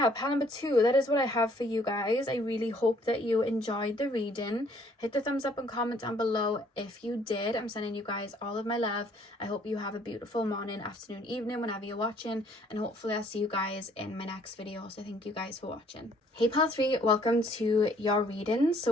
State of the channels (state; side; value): normal; both; correlation 0.62